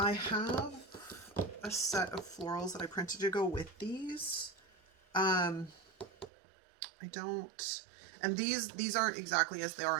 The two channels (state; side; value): drops out; left; at 6.3 s